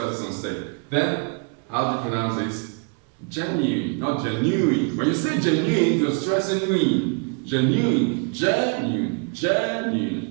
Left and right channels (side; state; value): left; quieter; 37.4 dB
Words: is on state. Then, how do you pronounce this? Genuine, not genuine. When you say genuine, you're stressing in. Genuine,